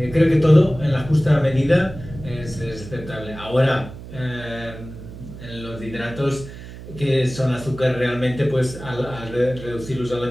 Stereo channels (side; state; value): right; noise; hum, 14 dB below the sound